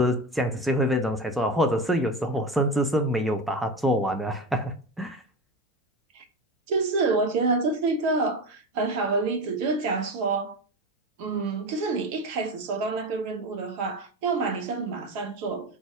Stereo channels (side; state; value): both; normal; correlation 0.23